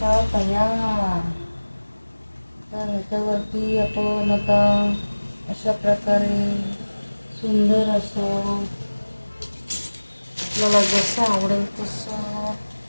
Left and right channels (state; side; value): inverted; both; correlation -1.00